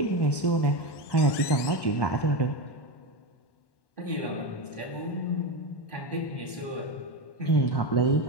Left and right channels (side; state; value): right; late; 1.1 ms